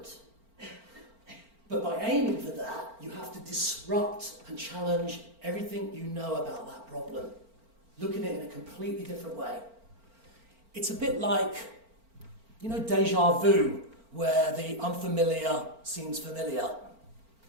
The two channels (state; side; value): late; left; 4.4 ms